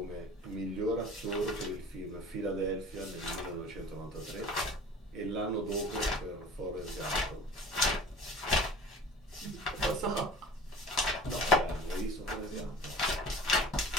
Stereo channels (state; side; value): normal; both; correlation 0.42